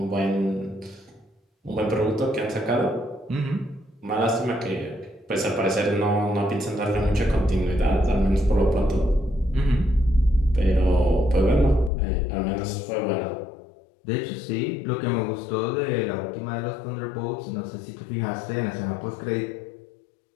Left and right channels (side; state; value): right; drops out; at 11.9 s